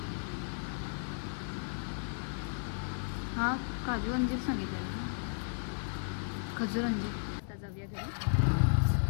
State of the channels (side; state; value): right; silent; digital silence